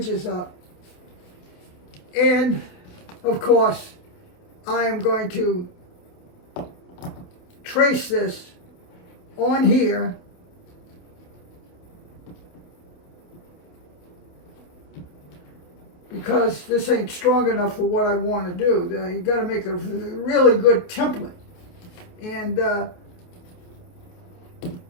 up. And, of course, I am going to trace this on here because this ain't strong enough for what I want to do. You got to make a really good template. And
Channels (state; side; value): late; right; 28 ms